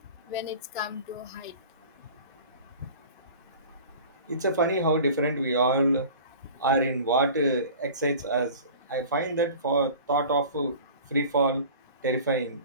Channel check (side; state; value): both; inverted; correlation -0.41